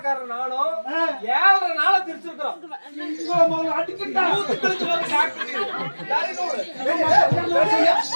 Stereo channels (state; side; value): inverted; both; correlation -1.00